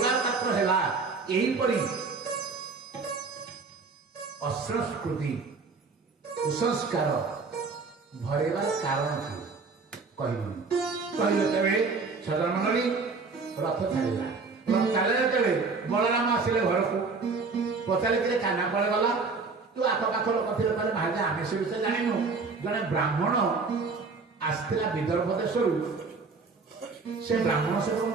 पात्र है यहीपरी असंस्कृति कुसंस्कार भरेबार कारण थी कहले तेरे सदामंडली रथ छाड़ा रथ छाड़ा तेरे बलराम आसिले घर को पचारे काना कड़े गला तू आखपाख लोक थे महाराज आम से विषय जानू जड़े ब्राह्मण आसला विदर्भ देश से ब्राह्मण सहित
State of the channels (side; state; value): left; quieter; 4.4 dB